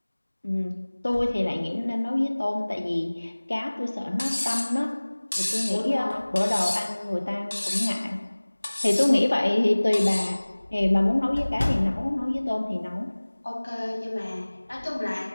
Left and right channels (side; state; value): both; inverted; correlation -1.00